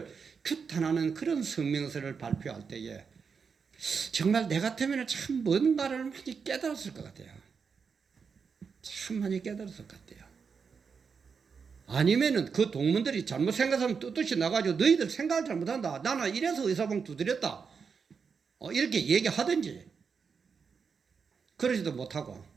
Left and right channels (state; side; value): quieter; left; 5.8 dB